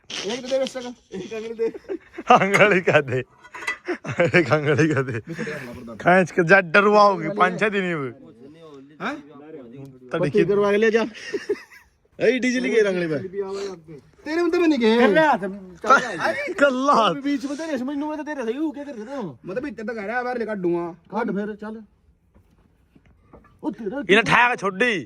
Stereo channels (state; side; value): identical; both; correlation 1.00